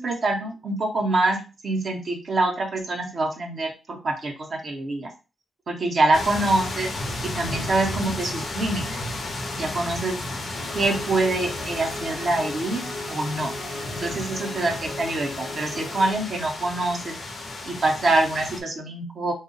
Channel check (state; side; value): normal; both; correlation 0.82